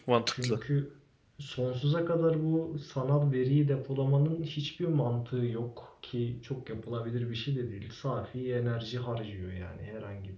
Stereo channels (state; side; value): identical; both; correlation 1.00